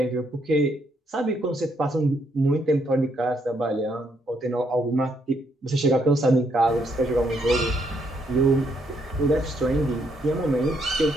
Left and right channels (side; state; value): both; normal; correlation 0.74